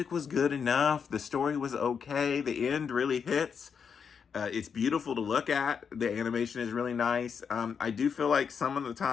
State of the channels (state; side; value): quieter; right; 6.6 dB